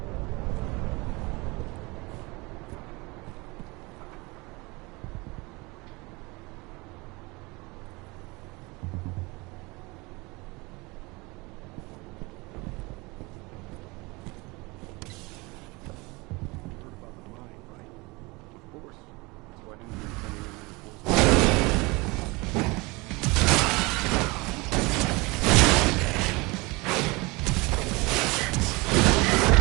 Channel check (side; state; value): left; quieter; 24.9 dB